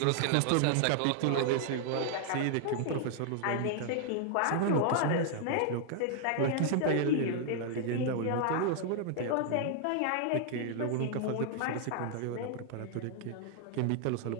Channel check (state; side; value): different; both; correlation 0.00